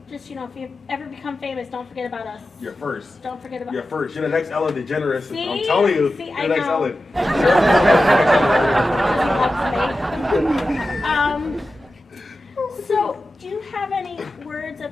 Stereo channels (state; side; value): normal; both; correlation 0.93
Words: Just, if you ever become famous, don't forget about us. You're first. Don't forget about You're first. You're the next Ellen DeGeneres. See? I'm telling you, See, you're I the next know. Ellen. So, do you have any words